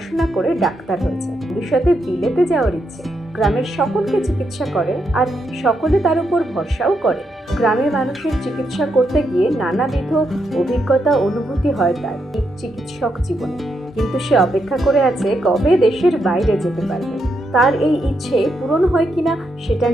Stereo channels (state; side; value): normal; both; correlation 0.81